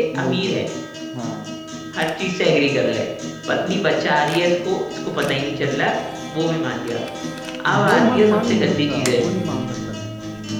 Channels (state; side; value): identical; both; correlation 1.00